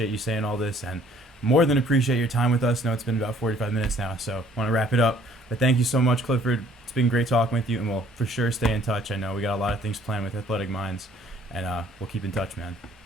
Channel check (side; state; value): both; normal; correlation 0.59